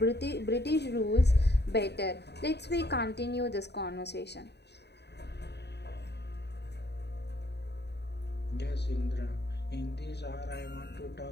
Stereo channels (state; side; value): late; right; 0.49 ms